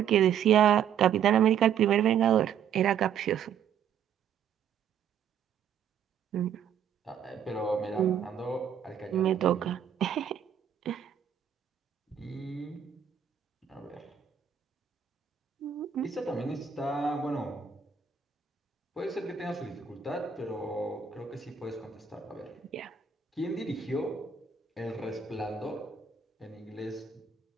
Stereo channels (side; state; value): left; quieter; 8.1 dB